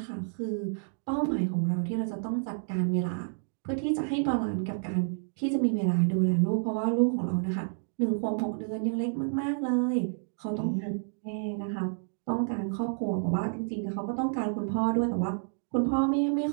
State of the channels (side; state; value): left; silent; digital silence